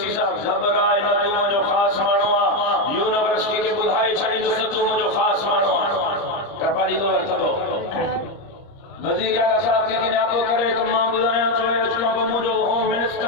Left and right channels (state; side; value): late; right; 30 ms